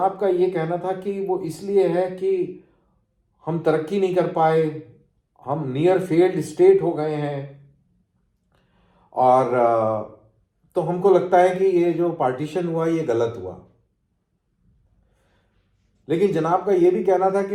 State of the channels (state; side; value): identical; both; correlation 1.00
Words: का ये कहना था कि वो इसलिए है कि हम तरक्की नहीं कर पाए, हम नियर फेल्ड स्टेट हो गए हैं, और तो हमको लगता है कि ये जो पार्टीशन हुआ ये गलत हुआ। लेकिन जनाब का ये भी कहना था कि